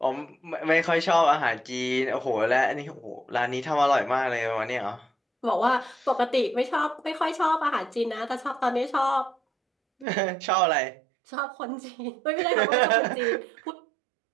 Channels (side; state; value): left; drops out; at 10.1 s